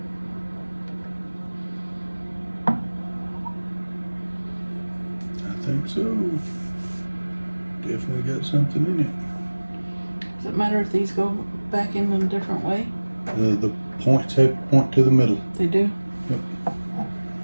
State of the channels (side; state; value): both; inverted; correlation -1.00